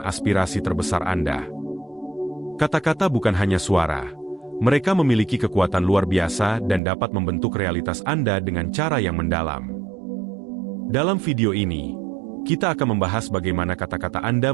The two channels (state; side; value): drops out; left; at 6.8 s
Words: terbesar Anda. Kata-kata bukan hanya suara. Mereka memiliki kekuatan luar biasa dan dapat membentuk realitas Anda dengan cara yang mendalam. Dalam video ini, kita akan membahas bagaimana kata-kata